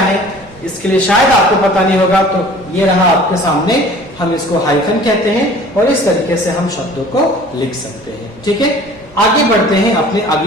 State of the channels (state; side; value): normal; both; correlation 0.47